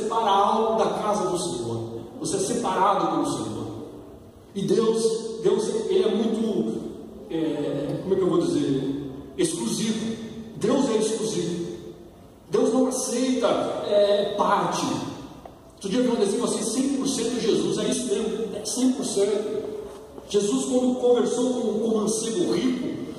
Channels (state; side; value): identical; both; correlation 1.00